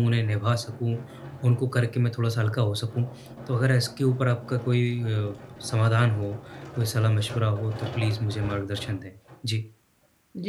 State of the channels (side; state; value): both; identical; correlation 1.00